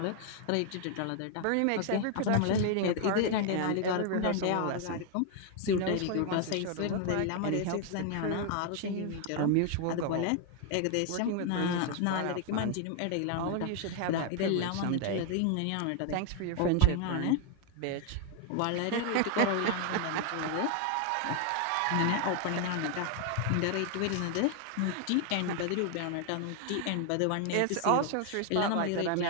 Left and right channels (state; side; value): different; both; correlation 0.00